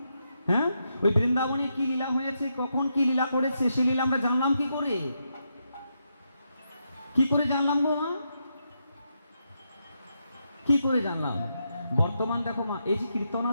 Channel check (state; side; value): inverted; both; correlation -0.82